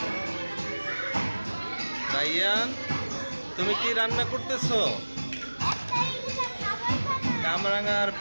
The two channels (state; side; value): inverted; both; correlation -1.00